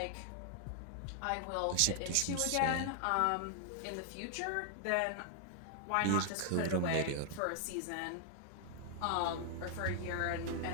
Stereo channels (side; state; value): both; different; correlation -0.01